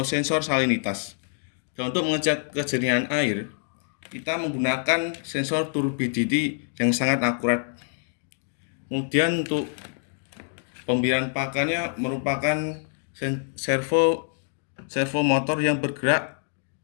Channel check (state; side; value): silent; right; 61 dB below the other